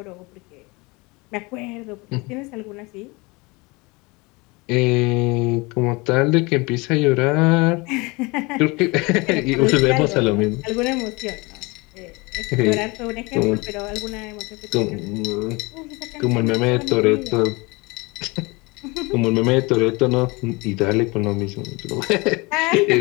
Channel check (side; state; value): right; quieter; 25.7 dB